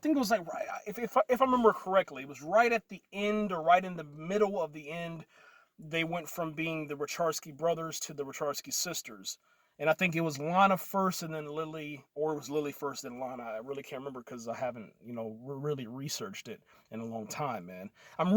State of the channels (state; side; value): identical; both; correlation 1.00